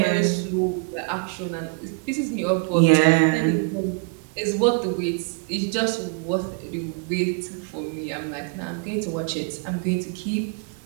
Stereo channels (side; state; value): left; quieter; 31.7 dB